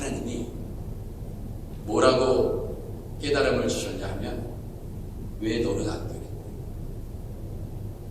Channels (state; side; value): identical; both; correlation 1.00